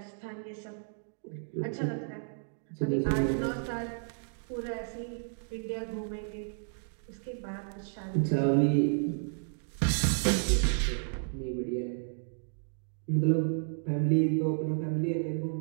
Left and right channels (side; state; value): left; silent; digital silence